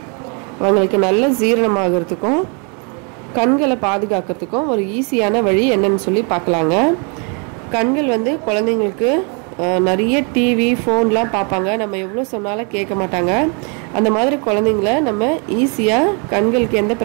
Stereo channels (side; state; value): left; quieter; 36.3 dB